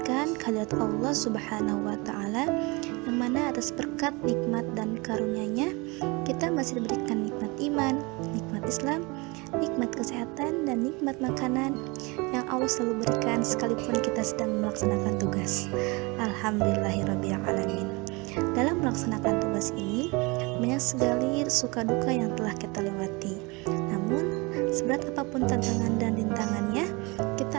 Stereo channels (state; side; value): quieter; left; 26.9 dB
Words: kehadirat Allah subhanahu wa ta'ala, yang mana atas berkat, nikmat, dan karunia-Nya kita masih diberikan nikmat iman, nikmat Islam, nikmat kesehatan, dan nikmat makanan yang Allah selalu berikan sekalipun kita sedang melaksanakan tugas. Alhamdulillahirrabbilalamin. Dalam melaksanakan tugas ini banyak sekali suka duka yang telah kita lewati. Namun seberat apapun tantangan dan rintangannya,